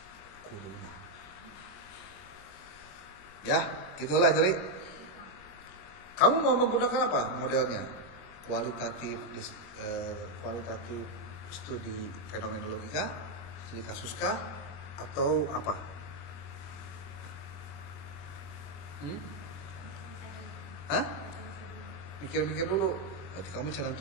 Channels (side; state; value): right; late; 21 ms